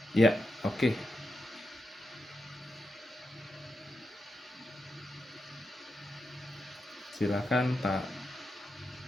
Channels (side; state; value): both; normal; correlation 0.86